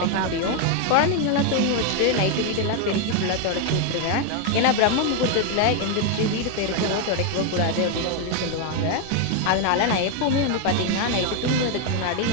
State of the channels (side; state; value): both; different; correlation 0.01